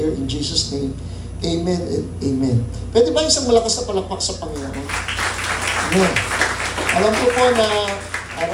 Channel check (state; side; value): identical; both; correlation 1.00